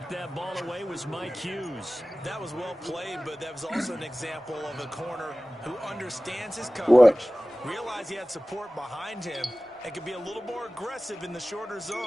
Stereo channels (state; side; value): normal; both; correlation 0.97